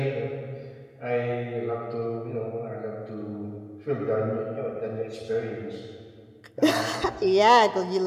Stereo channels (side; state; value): both; identical; correlation 1.00